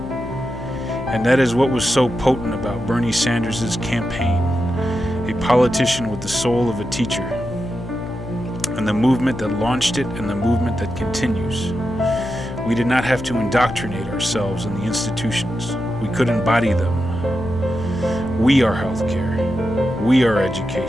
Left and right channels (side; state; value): left; noise; hum, 11 dB below the sound